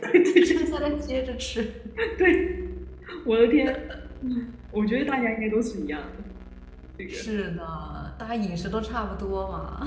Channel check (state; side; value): identical; both; correlation 1.00